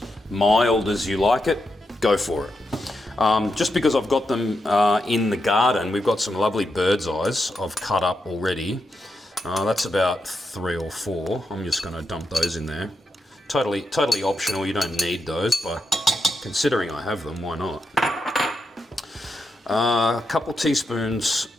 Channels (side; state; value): both; normal; correlation 0.85